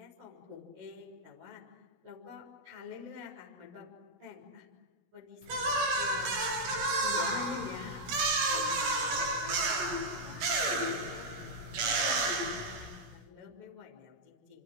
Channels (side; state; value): left; late; 17 ms